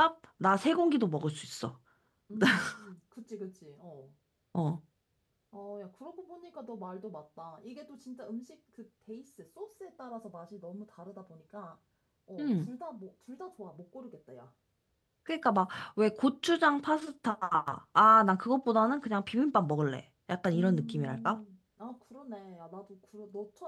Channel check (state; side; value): identical; both; correlation 1.00